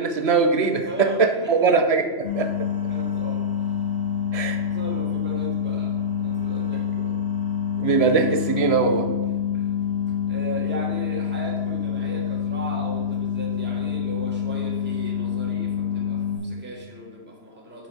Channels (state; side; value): late; right; 3.0 ms